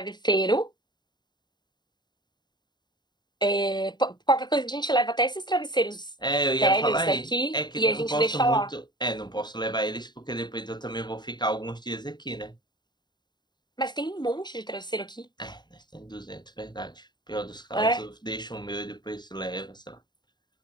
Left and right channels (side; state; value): right; late; 0.21 ms